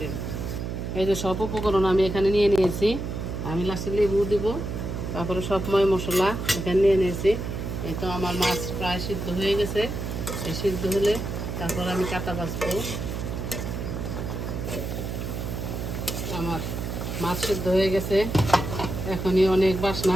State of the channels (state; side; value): noise; right; hum, 4 dB below the sound